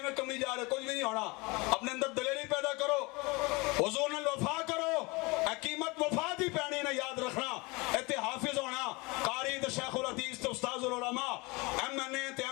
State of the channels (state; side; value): quieter; right; 25.7 dB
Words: کمی جا رہے, کچھ بھی نہیں ہونا. اپنے اندر دلیری پیدا کرو, حضور نے وفا کرو, قیمت وفا دی پہنی نے یاد رکھنا. ایتے حافظ ہونا, قاری تے شیخ الحدیث تے استاذ العلماء, MNA تے